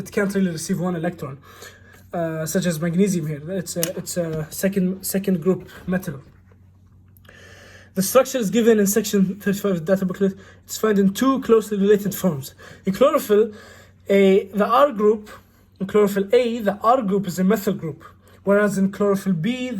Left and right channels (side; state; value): both; identical; correlation 1.00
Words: can't really receive 1 electron, such as magnesium here. It's a second group metal. The structure is given in section 35 of the data booklet. It's found in 2 closely related forms. In chlorophyll, the R group. In chlorophyll A, the R group is a methyl group, whereas in chlorophyll B,